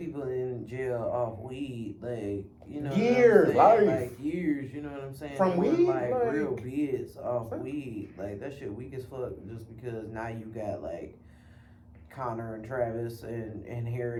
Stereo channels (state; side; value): identical; both; correlation 1.00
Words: in jail off weed, like years, like years. You know what I'm saying? From weed, like real bids off weed, like that shit weak as fuck. Just because now you got like Connor and Travis and